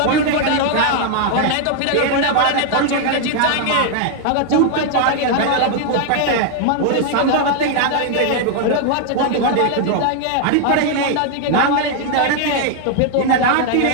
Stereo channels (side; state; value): both; different; correlation 0.00